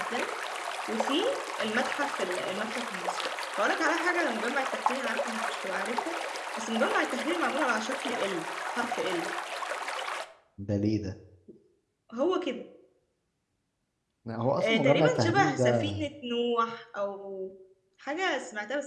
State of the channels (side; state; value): both; identical; correlation 1.00